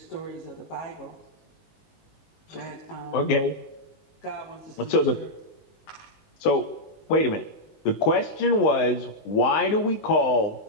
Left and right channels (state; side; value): late; right; 19 ms